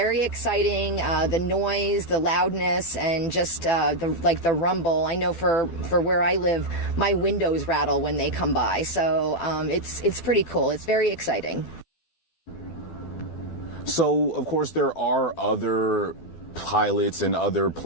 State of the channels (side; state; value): right; late; 12 ms